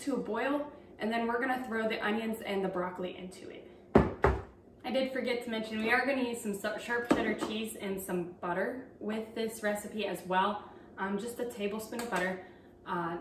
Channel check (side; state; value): both; identical; correlation 1.00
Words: a boil, and then we're going to throw the onions and the broccoli into it. I did forget to mention we are going to use some sharp cheddar cheese and some butter with this recipe as well. Just a tablespoon of butter,